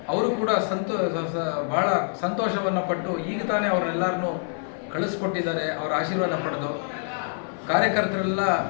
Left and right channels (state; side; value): silent; right; 56 dB below the other